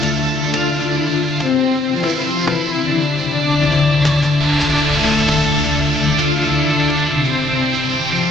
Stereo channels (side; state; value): both; normal; correlation 0.66